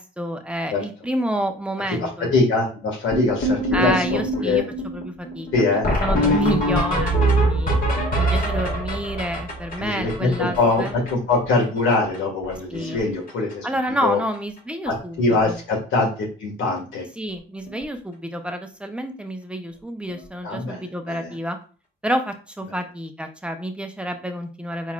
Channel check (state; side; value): normal; both; correlation 0.46